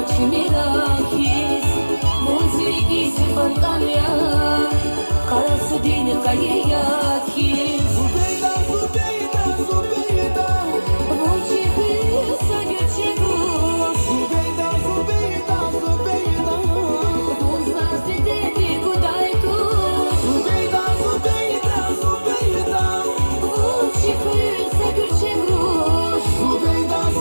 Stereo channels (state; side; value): inverted; both; correlation -1.00